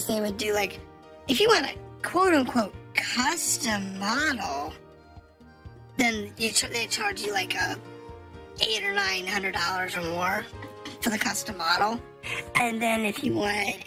they would do like, if you want a quote unquote custom model, then they charge you like $800 or $900 or more for the custom model. And then if you wanted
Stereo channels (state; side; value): identical; both; correlation 1.00